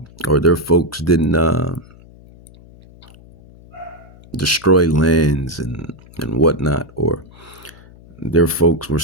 or their folks didn't destroy lands and whatnot, or their folks were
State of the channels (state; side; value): noise; left; hum, 23 dB below the sound